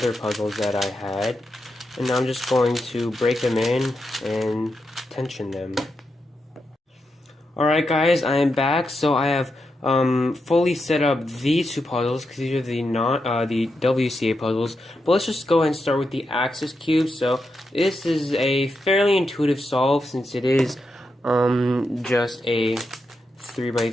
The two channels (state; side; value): normal; both; correlation 0.86